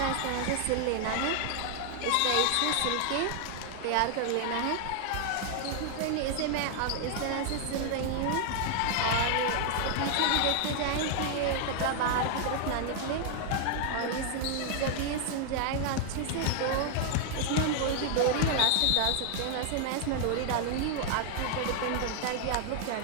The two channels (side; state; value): both; different; correlation 0.00